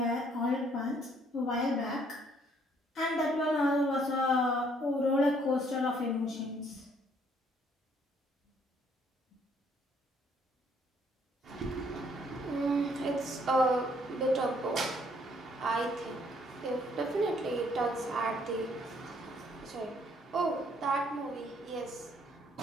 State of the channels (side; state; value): both; normal; correlation 0.65